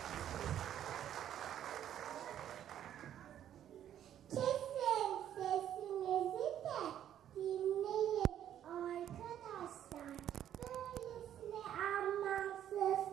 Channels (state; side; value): quieter; left; 10.7 dB